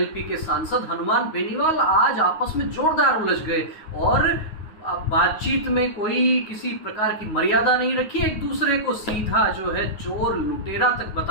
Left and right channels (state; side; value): late; right; 9.5 ms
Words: के सांसद हनुमान बेनीवाल आज आपस में जोरदार उलझ गए और बातचीत में कोई किसी प्रकार की मर्यादा नहीं रखी। एक दूसरे को सीधा जो है चोर लुटेरा तक